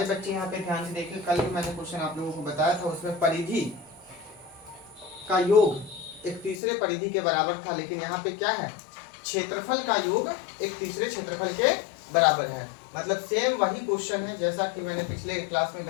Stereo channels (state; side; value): drops out; right; at 6.6 s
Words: बच्चे यहाँ पे ध्यान से देखिए। कल भी मैंने क्वेश्चन आप लोगों को बताया था, उसमें परिधि का योग एक तीसरे परिधि के बराबर था, लेकिन यहाँ पे क्या है, क्षेत्रफल का योग एक तीसरे क्षेत्रफल के बराबर है। मतलब सेम वही क्वेश्चन है जैसा कि मैंने पिछले क्लास में